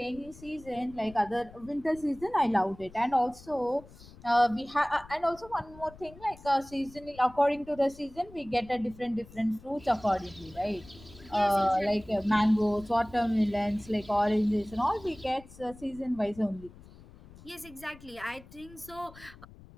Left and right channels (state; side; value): noise; left; rumble, 20 dB below the sound